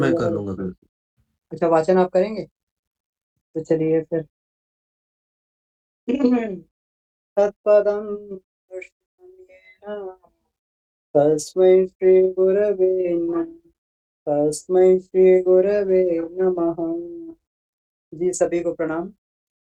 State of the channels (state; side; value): identical; both; correlation 1.00